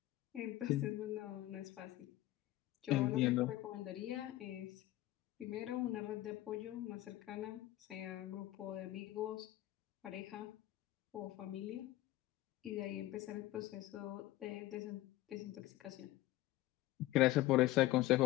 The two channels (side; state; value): right; quieter; 16.3 dB